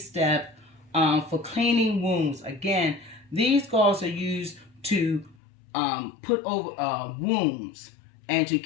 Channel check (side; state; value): right; drops out; at 5.4 s